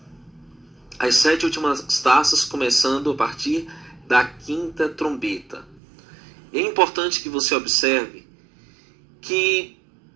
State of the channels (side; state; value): left; drops out; at 5.8 s